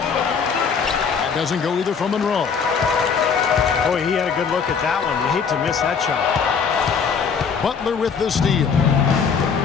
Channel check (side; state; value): right; quieter; 6.1 dB